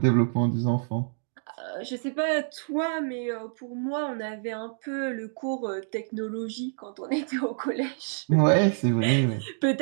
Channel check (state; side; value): silent; left; digital silence